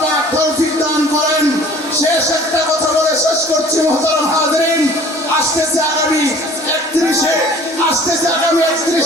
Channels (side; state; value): both; normal; correlation 0.50